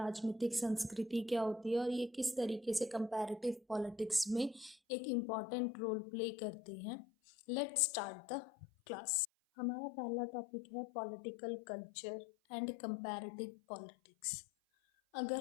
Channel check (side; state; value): right; drops out; at 4.8 s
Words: संस्कृति क्या होती है और ये किस तरीके से कंपैरेटिव पॉलिटिक्स में एक इम्पॉर्टेंट रोल प्ले करते हैं। Let's start the class. हमारा पहला टॉपिक है political culture and comparative politics.